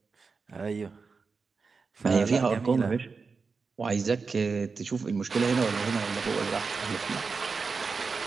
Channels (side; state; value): left; quieter; 4.7 dB